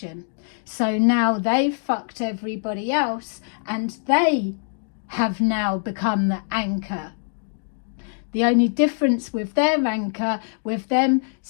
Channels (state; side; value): silent; right; digital silence